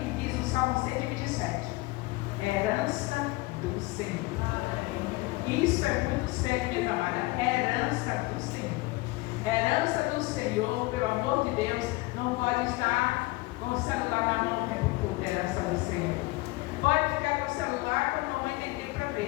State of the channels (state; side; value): quieter; right; 21.9 dB